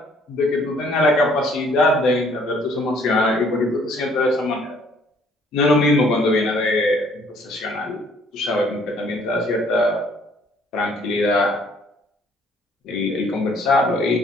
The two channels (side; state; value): both; normal; correlation 0.61